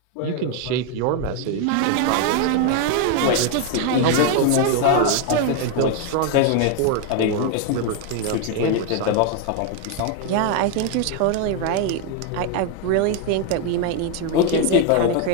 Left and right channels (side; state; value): both; different; correlation 0.01